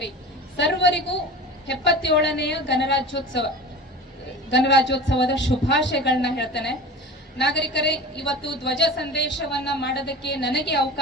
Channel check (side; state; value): both; normal; correlation 0.34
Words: ಸರ್ವರಿಗೂ 77ನೆಯ ಗಣರಾಜ್ಯೋತ್ಸವದ ಶುಭಾಶಯಗಳನ್ನ ಹೇಳ್ತೇನೆ. ನಾಗರಿಕರೇ, ಇವತ್ತು ಧ್ವಜ ಸಂದೇಶವನ್ನ ಮಾಡೋದಕ್ಕೆ ನನಗೆ